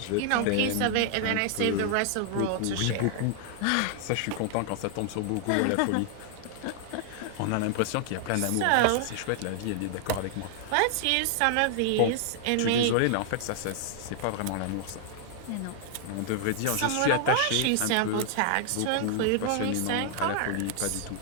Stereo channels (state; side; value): different; both; correlation 0.00